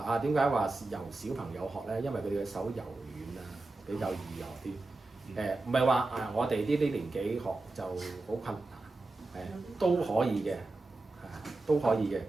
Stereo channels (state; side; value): quieter; left; 3.2 dB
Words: 啊，點解話由小朋友學咧？因為佢哋嘅手柔軟啊，比較易學啲。唔係話我哋呢啲年紀學就好困難，都可以嘅，都可以嘅。